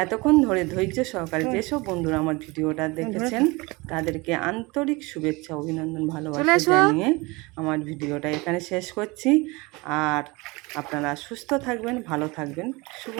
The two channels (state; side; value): quieter; left; 24.5 dB